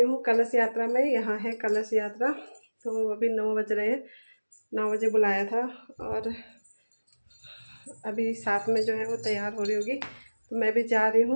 हूँ कलश यात्रा में। यहाँ है कलश यात्रा। तो अभी 9 बज रहे हैं, 9 बजे बुलाया था और अभी साथ में जो है वो तैयार हो रही होगी, तो मैं भी जा रही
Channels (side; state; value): both; inverted; correlation -1.00